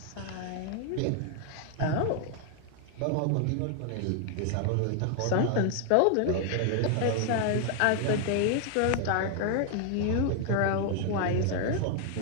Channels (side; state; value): both; different; correlation 0.00